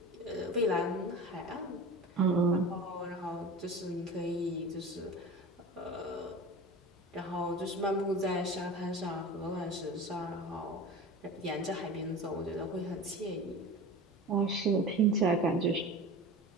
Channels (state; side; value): normal; both; correlation 0.34